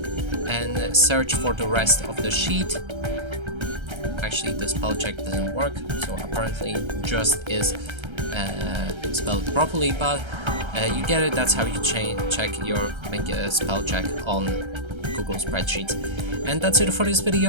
search for the rest of the sheet. Actually, the spell check doesn't work, so apparently just is spelled properly, but you get it. That's how you make a spell check on Google Spreadsheets. And that's it for this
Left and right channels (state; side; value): late; left; 1.3 ms